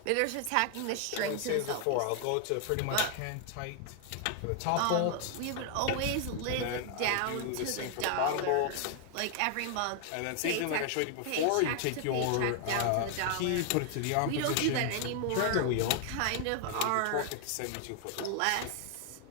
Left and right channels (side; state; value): both; different; correlation 0.00